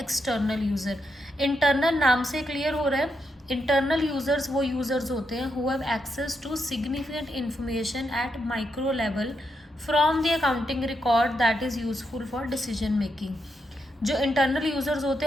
यूज़र। इंटरनल नाम से क्लियर हो रहा है। इंटरनल यूजर्स वो यूजर्स होते हैं who have access to significant information at micro level from the accounting record that is useful for decision making. जो इंटरनल यूजर्स होते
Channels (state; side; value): normal; both; correlation 0.82